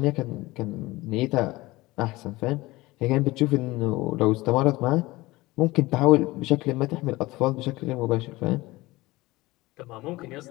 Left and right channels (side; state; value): right; quieter; 20.2 dB